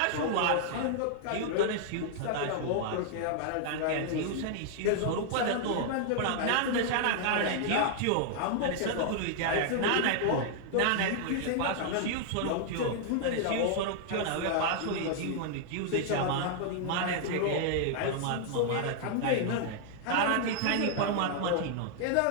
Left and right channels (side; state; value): both; different; correlation -0.01